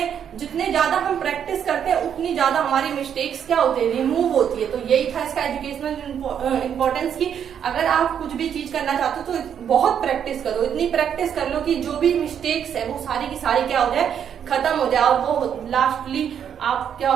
जितने ज्यादा हम प्रैक्टिस करते हैं उतनी ज्यादा हमारी मिस्टेक्स क्या होती है, रिमूव होती है। तो यही था इसका एजुकेशनल इंपॉर्टेंस की अगर आप कुछ भी चीज करना चाहते हो तो बहुत प्रैक्टिस करो, इतनी प्रैक्टिस कर लो कि जो भी मिस्टेक्स है वो सारी की सारी क्या हो जाए, खत्म हो जाए और वो लास्टली आप क्या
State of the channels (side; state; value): left; quieter; 8.5 dB